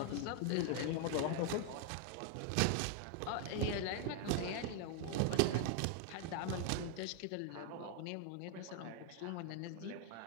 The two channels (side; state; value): both; different; correlation 0.00